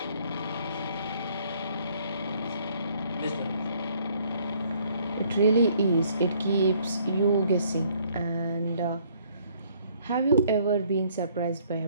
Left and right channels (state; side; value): inverted; both; correlation -0.63